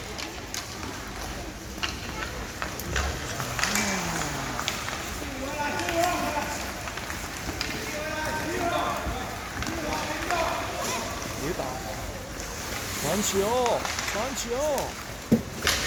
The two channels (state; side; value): identical; both; correlation 1.00